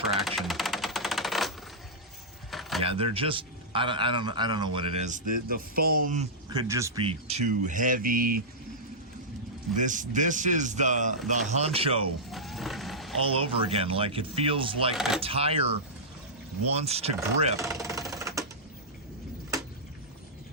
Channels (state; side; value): normal; both; correlation -0.11